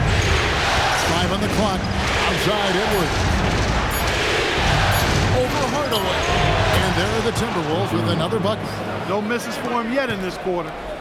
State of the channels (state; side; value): identical; both; correlation 1.00